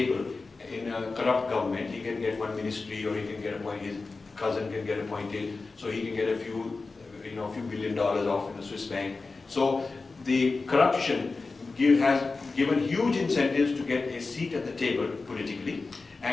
in a corrupt government. He can get one ministry, or he can get appointed, his cousin can get appointed, so he can get a few $1 billion off in a Swiss bank. So the corruption has given huge incentives to get a seat at the table politically,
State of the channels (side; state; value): right; quieter; 3.9 dB